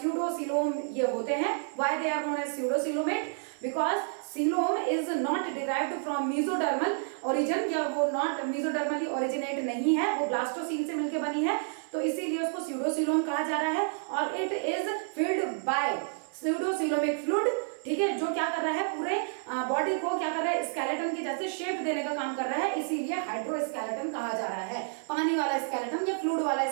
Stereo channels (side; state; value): left; silent; digital silence